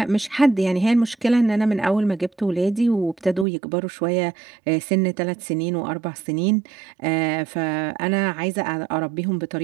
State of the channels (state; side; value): drops out; left; at 3.5 s